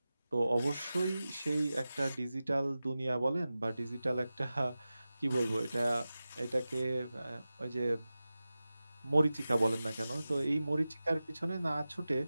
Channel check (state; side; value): inverted; both; correlation -0.95